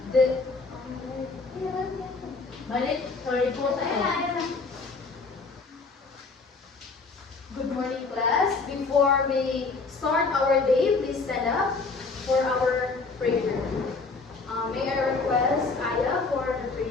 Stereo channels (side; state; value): right; quieter; 4.1 dB